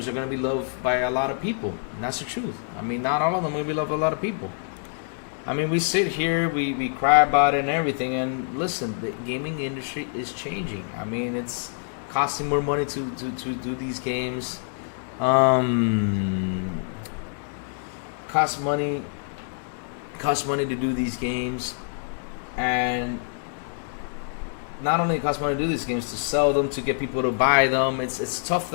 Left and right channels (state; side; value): silent; right; digital silence